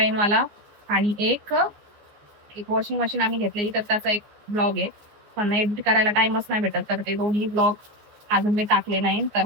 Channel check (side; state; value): left; late; 14 ms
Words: वाला आणि एक वॉशिंग मशीन आम्ही घेतलेली, तर त्याचा एक ब्लॉग आहे. पण एडिट करायला टाइमच नाही भेटत, तर ते दोन्ही ब्लॉग अजून मी टाकले नाही. तर